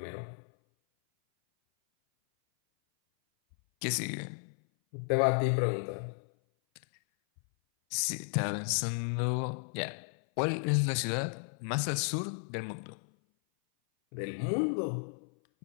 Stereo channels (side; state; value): right; silent; 55 dB below the other